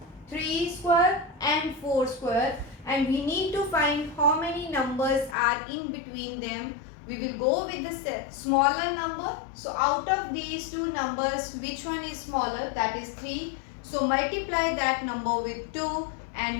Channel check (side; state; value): right; drops out; at 5.4 s